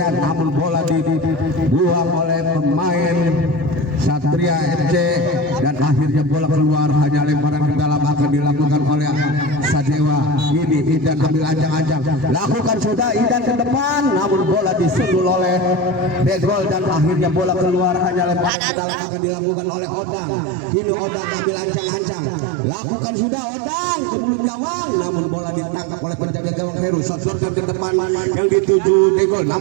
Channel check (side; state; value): left; drops out; at 18.5 s